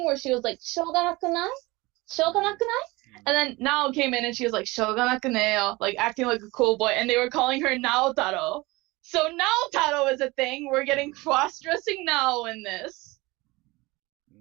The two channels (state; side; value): quieter; left; 22.4 dB